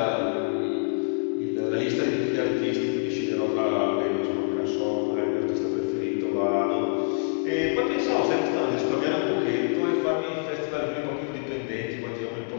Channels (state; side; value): silent; right; 61 dB below the other